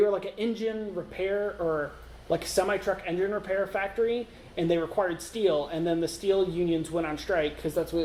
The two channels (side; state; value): both; identical; correlation 1.00